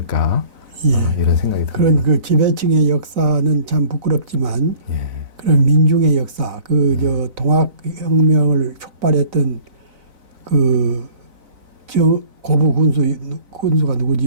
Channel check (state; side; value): late; left; 4.0 ms